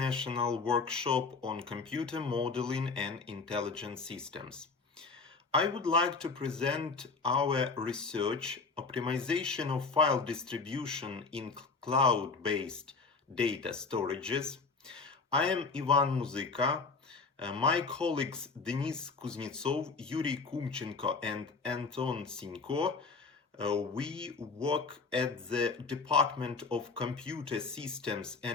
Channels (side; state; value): right; quieter; 4.4 dB